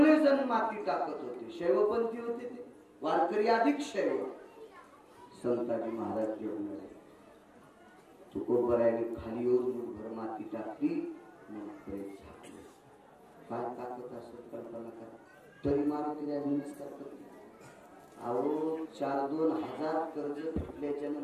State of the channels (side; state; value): both; identical; correlation 1.00